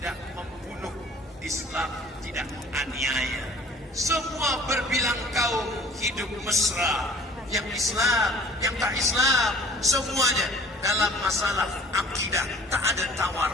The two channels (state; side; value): normal; both; correlation 0.50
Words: membunuh, Islam tidak menganiaya. Semua berbilang kaum hidup mesra, yang Islam, yang tak Islam, semuanya dalam masalah akidah tak ada tawar